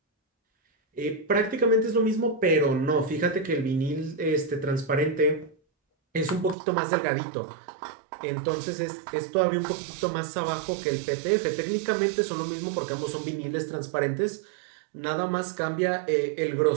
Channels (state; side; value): drops out; left; at 6.6 s